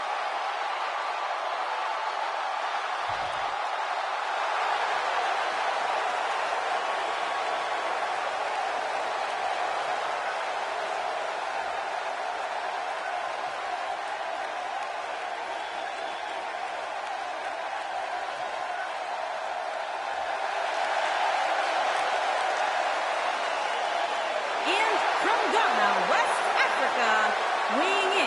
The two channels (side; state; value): both; identical; correlation 1.00